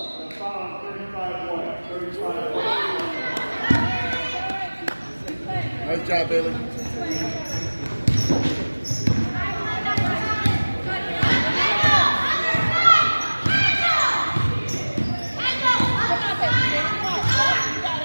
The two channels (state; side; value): inverted; both; correlation -1.00